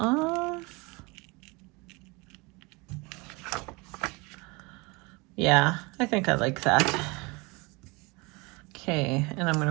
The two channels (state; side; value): quieter; left; 26.5 dB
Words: Yeah, I think I like that. Okay, and I'm going